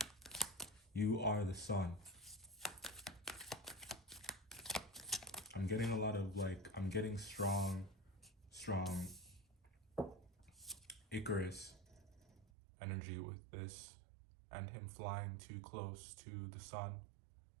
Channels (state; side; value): drops out; left; at 12.5 s